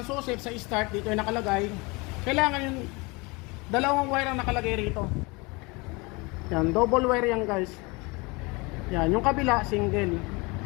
susip sa start, dito yung nakalagay. Kailangan yung dalawang wire ang nakalagay rito. Yan, double wire yan guys. Yan, yung kabila, single.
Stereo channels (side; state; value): right; quieter; 26.6 dB